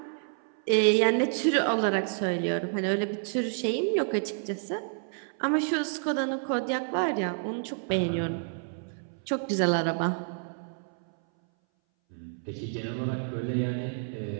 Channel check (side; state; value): left; silent; 58 dB below the other